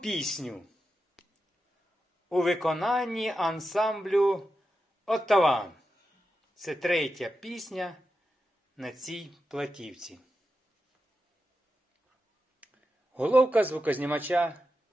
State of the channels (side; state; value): both; normal; correlation 0.89